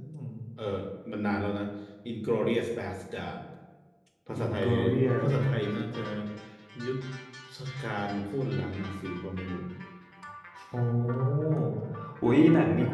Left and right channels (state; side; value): identical; both; correlation 1.00